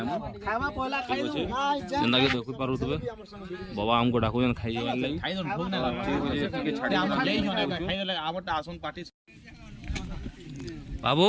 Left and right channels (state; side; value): identical; both; correlation 1.00